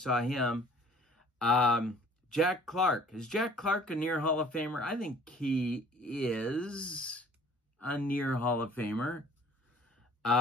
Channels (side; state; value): both; normal; correlation 0.52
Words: him. Jack Clark. Is Jack Clark a near Hall of Famer? I think he is a near Hall of Famer.